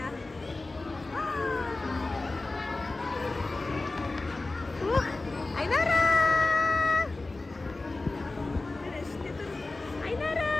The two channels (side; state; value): right; quieter; 3.2 dB